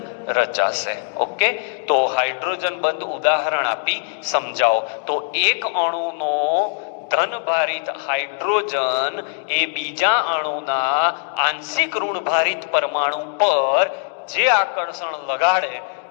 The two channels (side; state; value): right; silent; digital silence